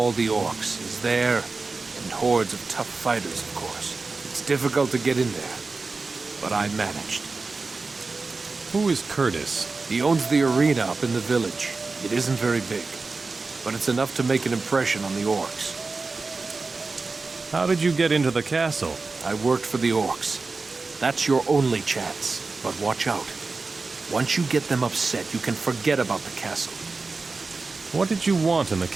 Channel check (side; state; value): left; quieter; 4.0 dB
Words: the orcs, is there, and hordes of tough fighters, of course. It's difficult to get in there, but I managed. Who is Curtis? He owns the arena up in the village. It isn't very big, but it's enough to make an impression on the orcs. How did you get into the castle? I worked for the orcs. That's your only chance, but watch out. Once you get them upset, you can forget about the castle. What did you want in the